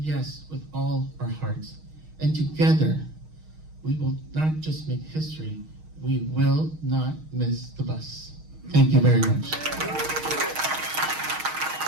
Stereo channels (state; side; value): late; left; 6.4 ms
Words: with all our hearts. And together, we will not just make history, we will not miss the bus. Thank you very much.